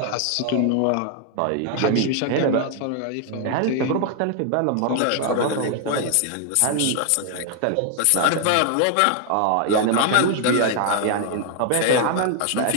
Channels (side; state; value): both; different; correlation 0.00